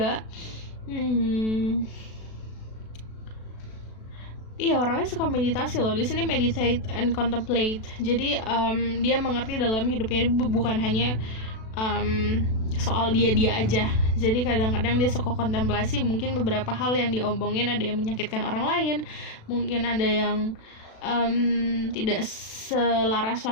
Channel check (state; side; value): late; right; 36 ms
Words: iya, orangnya suka meditasi loh. Di sini meditate and contemplate. Jadi dia mengerti dalam hidupnya bukan hanya soal dia aja. Jadi kadang-kadang dia suka kontemplasi. Mungkin beberapa hal yang diomongin ada yang menyakitkan orang lain, mungkin ada yang tidak selaras